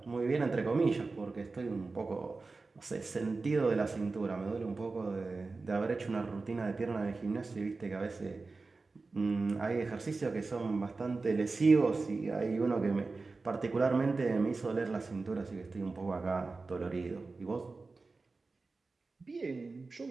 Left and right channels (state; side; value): quieter; left; 3.8 dB